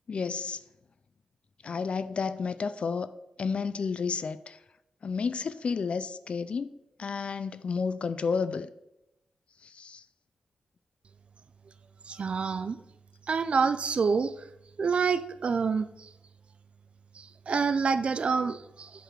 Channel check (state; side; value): normal; both; correlation 0.78